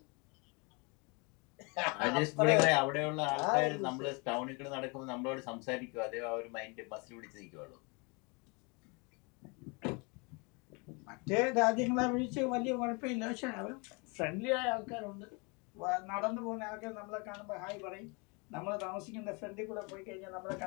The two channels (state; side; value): quieter; right; 30.6 dB